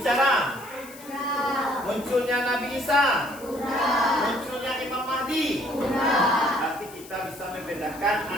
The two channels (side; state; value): left; noise; hiss, 19 dB below the sound